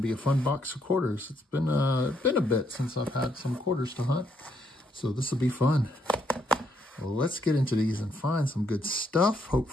to be a fun box of quarters. It's been a bit since I've had some quarters to hunt. So this will be fun. Well, let's get into these and find some good stuff,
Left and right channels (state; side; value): normal; both; correlation 0.74